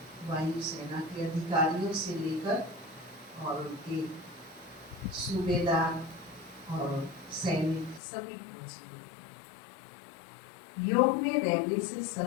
वायु सेना के अधिकारियों से लेकर और उनके सूबेदार और सैनिक सभी पहुंचे। योग में रहने से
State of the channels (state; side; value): drops out; right; at 8.0 s